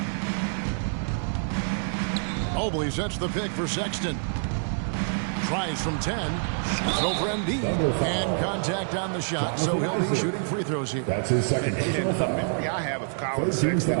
Mobley sets the pick for Sexton. Tries from 10. Shoots over Embiid. And contact on the shot, so he'll be shooting free throws here. That's his second. And a memory I have of Colin Sexton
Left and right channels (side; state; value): left; silent; digital silence